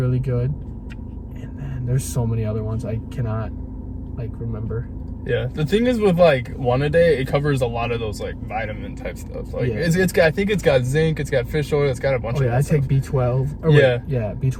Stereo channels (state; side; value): identical; both; correlation 1.00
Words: good, and then there's so many other ones I cannot, like, remember. Yeah, the thing is with like one a day, it covers a lot of those like vitamin type stuff. Like it's got, I think it's got zinc, it's got fish oil, it's got a bunch of. Yeah, I take B12. Yeah,